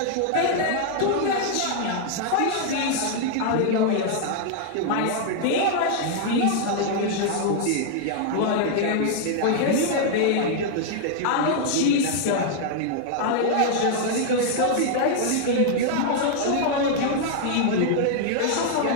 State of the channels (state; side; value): different; both; correlation 0.00